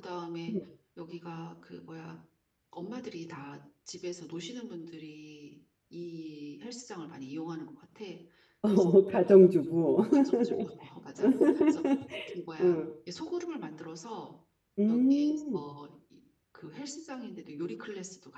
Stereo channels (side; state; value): both; identical; correlation 1.00